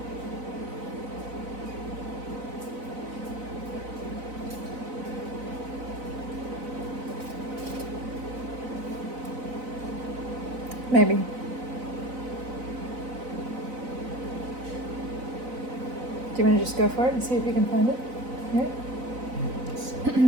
Maybe. Do you want to just go for it and see if you can find it? Here?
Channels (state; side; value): late; left; 4.0 ms